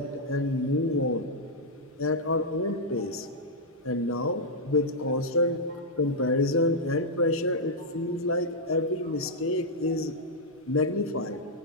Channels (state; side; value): normal; both; correlation -0.05